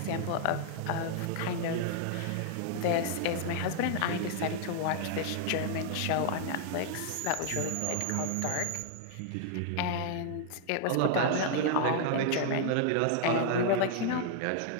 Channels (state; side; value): different; both; correlation 0.00